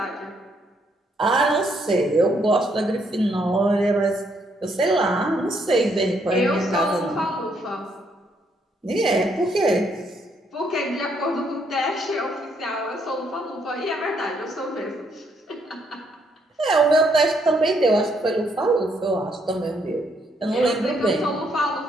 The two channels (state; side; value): normal; both; correlation 0.72